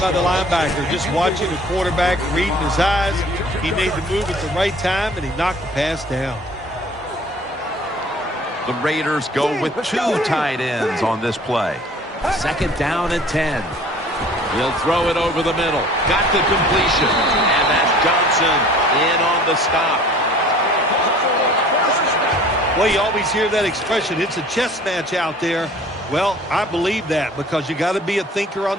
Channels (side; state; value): both; normal; correlation 0.49